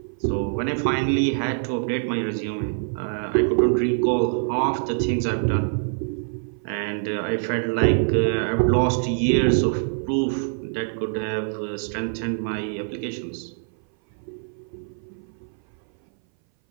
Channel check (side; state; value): left; silent; 59 dB below the other